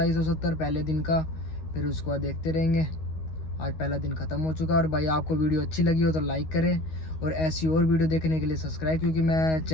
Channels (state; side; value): late; right; 13 ms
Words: पहले दिन का, फिर उसके बाद देखते रहेंगे। आज पहला दिन ख़त्म हो चुका है। और भाई आपको वीडियो अच्छी लगी हो तो लाइक करें, और ऐसी और वीडियो देखने के लिए सब्सक्राइब, क्योंकि मैं